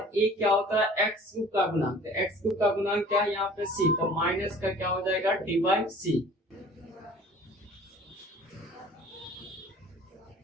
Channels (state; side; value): normal; both; correlation 0.48